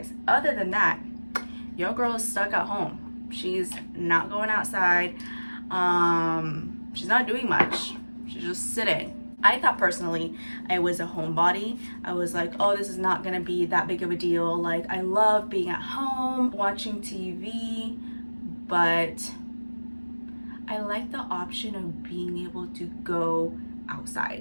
Other than that, your girl is stuck at home. She's not going outside. She's not doing much. She's just sitting. I thought personally I was a homebody. I was like, oh, this is not gonna be that big of a deal. Like, I love being at home, watching TV, but I like the option of being able to go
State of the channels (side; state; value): both; inverted; correlation -1.00